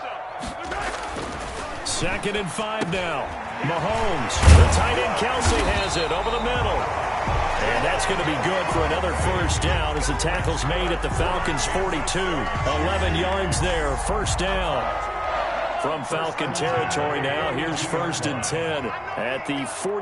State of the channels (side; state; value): both; identical; correlation 1.00